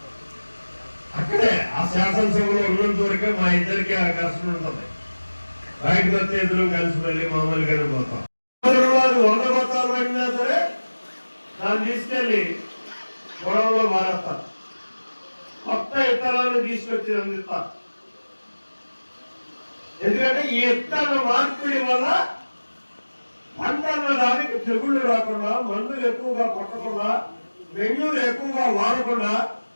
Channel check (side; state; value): both; inverted; correlation -1.00